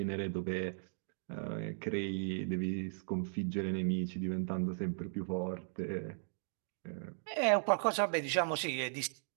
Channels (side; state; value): left; silent; digital silence